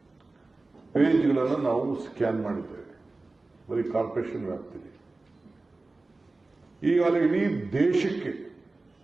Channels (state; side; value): quieter; left; 3.3 dB